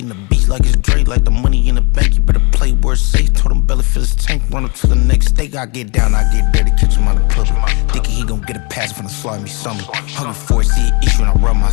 the beats like it's Dre, like the money in the bank. You better play where it's safe. Told him belly fill his tank, run him to the next state. I get down, I get dirty, catch him on the public. Thinking he gon' get a pass from the slimy summer. Hungry for it, see an issue and I rub my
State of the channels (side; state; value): right; quieter; 31.2 dB